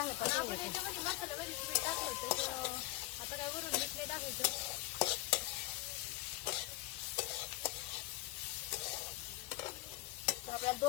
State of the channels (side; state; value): right; quieter; 18.2 dB